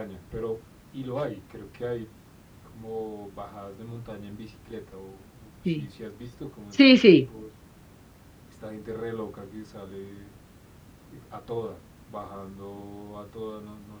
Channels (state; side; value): identical; both; correlation 1.00